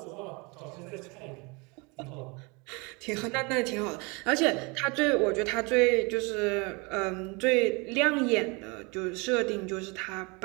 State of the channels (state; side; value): quieter; left; 28.6 dB